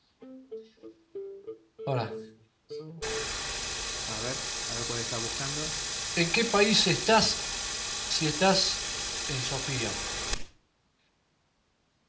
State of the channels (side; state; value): both; identical; correlation 1.00